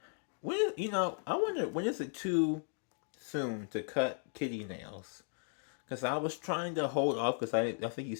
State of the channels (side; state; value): right; silent; 54 dB below the other